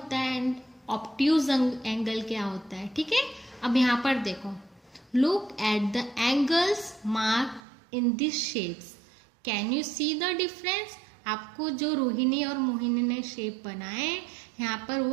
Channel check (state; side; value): drops out; left; at 7.6 s